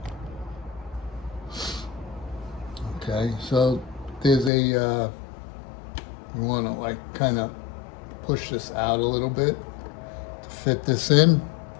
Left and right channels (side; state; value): right; drops out; at 4.5 s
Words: Okay, so there's a, you want to like kind of push this out a little bit to fit this in.